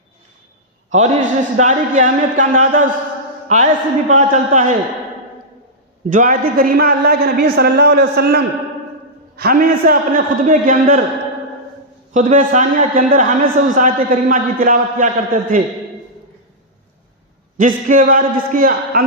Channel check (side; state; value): both; normal; correlation -0.09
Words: और इस रिश्तेदारी की अहमियत का अंदाज़ा उस आयत से भी पता चलता है जो आयत करीमा अल्लाह के नबी सल्लल्लाहु अलैहि वसल्लम हमेशा अपने खुतबे के अंदर, खुतबे सानिया के अंदर हमेशा उस आयत करीमा की तिलावत किया करते थे, जिसके